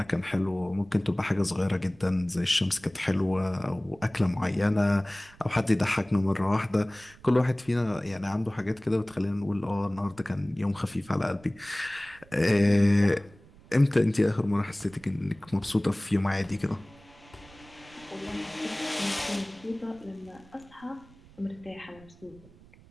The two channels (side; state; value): right; noise; rumble, 25 dB below the sound